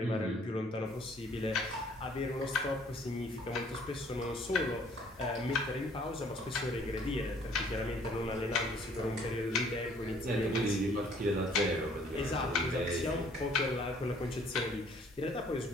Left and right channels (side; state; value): both; normal; correlation 0.59